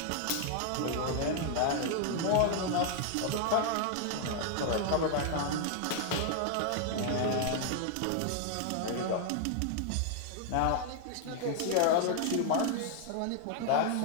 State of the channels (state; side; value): different; both; correlation 0.00